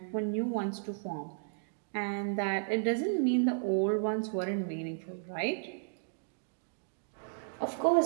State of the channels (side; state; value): left; silent; digital silence